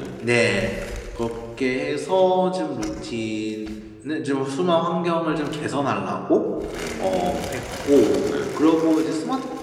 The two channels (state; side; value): identical; both; correlation 1.00